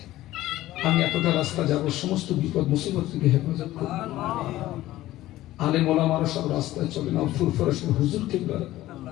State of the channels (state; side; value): quieter; right; 15.6 dB